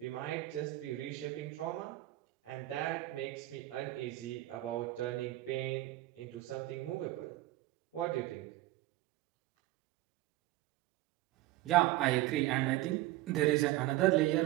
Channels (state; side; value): quieter; left; 17.0 dB